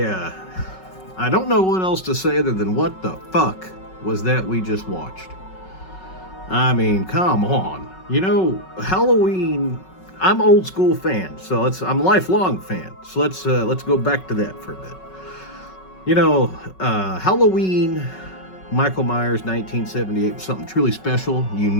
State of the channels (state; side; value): late; right; 5.4 ms